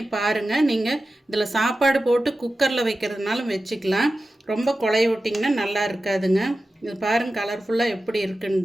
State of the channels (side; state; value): both; normal; correlation 0.93